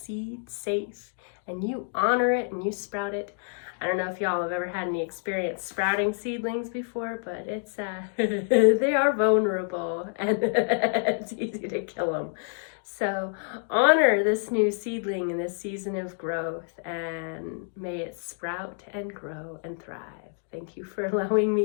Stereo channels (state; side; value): silent; right; 59 dB below the other